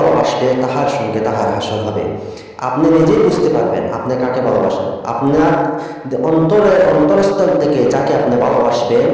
তাহার সঙ্গে তাহার হাসর হবে। আপনি নিজেই বুঝতে পারবেন আপনি কাকে ভালোবাসেন। আপনার অন্তরস্থল থেকে যাকে আপনি ভালোবাসবেন,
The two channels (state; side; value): identical; both; correlation 1.00